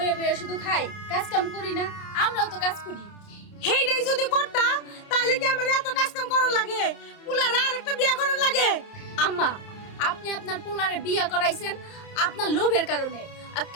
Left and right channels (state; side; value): late; right; 30 ms